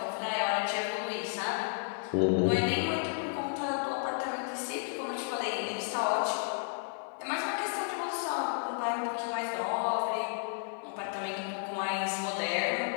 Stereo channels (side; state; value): right; silent; 56 dB below the other